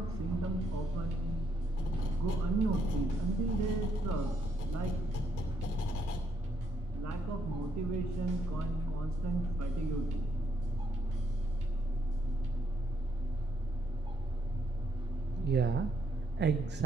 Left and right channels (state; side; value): normal; both; correlation 0.74